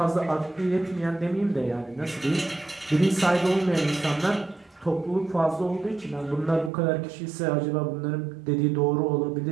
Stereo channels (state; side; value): drops out; left; at 6.7 s